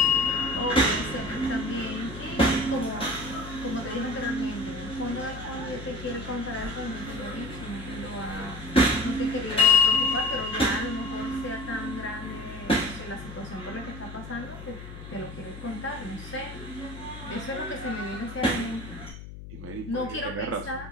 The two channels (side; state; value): left; noise; hum, 12 dB below the sound